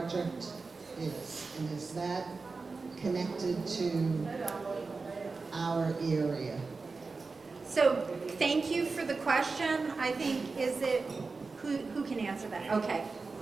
is, and is that connected to our area? So thank you for the question. I think, is it, who can answer that? Okay,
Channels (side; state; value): left; quieter; 4.2 dB